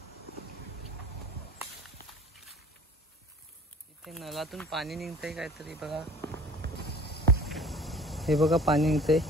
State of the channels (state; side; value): normal; both; correlation 0.46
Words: इथे नळातून पाणी निघतंय काहीतरी. बघा, हे बघा पाणी निघतंय.